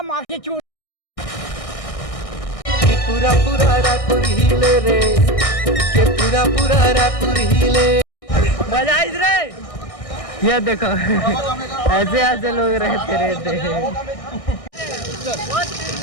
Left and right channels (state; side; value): late; right; 1.6 ms